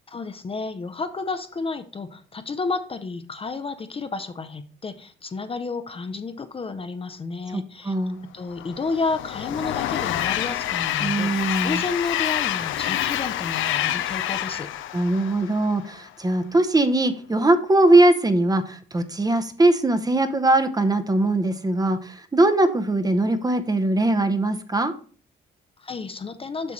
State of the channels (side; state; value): both; normal; correlation 0.66